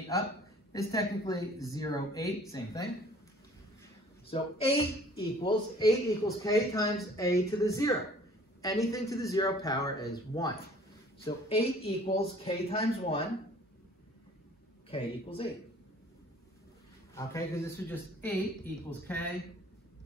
up, is technically 0, 8, same thing. So 8 equals k times a to the 0. Anything to the 0 power is 1. So 8 equals k times 1, k equals 8. Okay, because this is just 8 equals k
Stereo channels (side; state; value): both; normal; correlation 0.53